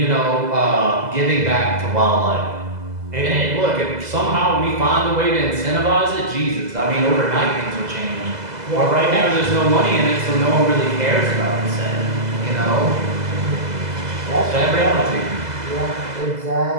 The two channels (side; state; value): left; late; 2.0 ms